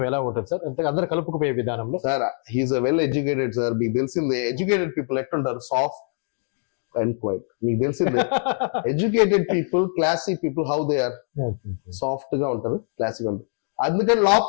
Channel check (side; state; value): right; silent; 63 dB below the other